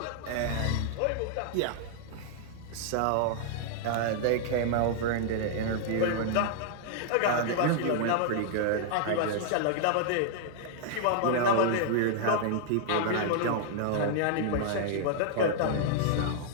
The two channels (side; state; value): both; different; correlation -0.01